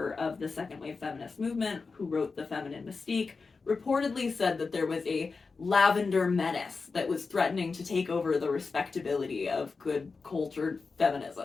of the second-wave feminist movement who wrote The Feminine Mystique, reportedly said that there was a Lavender menace that was threatening to take over the respectability of good, cultured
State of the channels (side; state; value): right; quieter; 4.5 dB